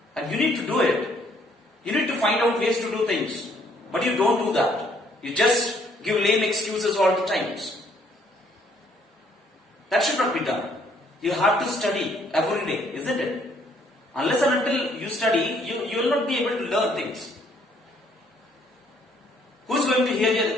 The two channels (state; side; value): normal; both; correlation 0.65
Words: and you need to do it. You need to find out ways to do things, but you don't do that. You just give lame excuses all the times. That should not be done. You have to study every day, isn't it? Unless and until you study, you will not be able to learn things. Who's going to hear